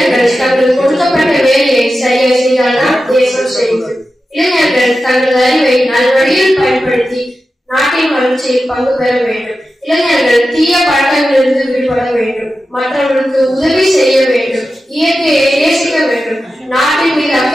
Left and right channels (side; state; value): both; normal; correlation 0.92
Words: தங்கள் கொடுக்கப்பட்ட வேலையை சரியாக செய்தால்தான் தேசம் செழிக்கும். இளைஞர்கள் தங்கள் அறிவை நல்வழியில் பயன்படுத்தி நாட்டின் வளர்ச்சியில் பங்கு பெற வேண்டும். இளைஞர்கள் தீய பழக்கங்களிலிருந்து விடுபட வேண்டும். மற்றவர்களுக்கு உதவி செய்ய வேண்டும். இயற்கையை நேசிக்க வேண்டும். நாட்டின் மீது